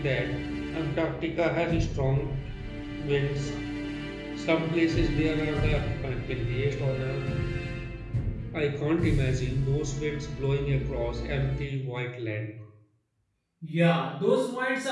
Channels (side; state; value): both; identical; correlation 1.00